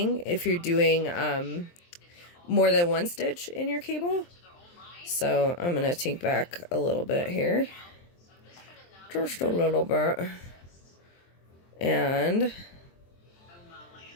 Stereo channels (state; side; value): late; right; 23 ms